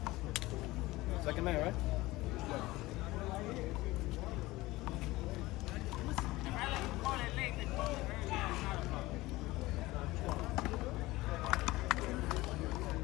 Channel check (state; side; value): quieter; right; 19.3 dB